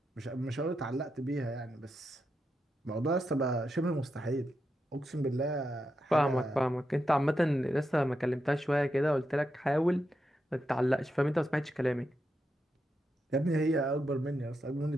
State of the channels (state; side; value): normal; both; correlation 0.86